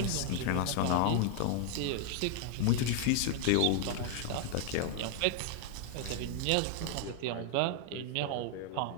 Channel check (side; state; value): both; different; correlation 0.00